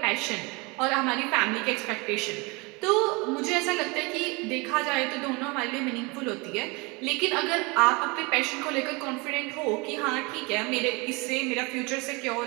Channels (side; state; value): left; quieter; 27.3 dB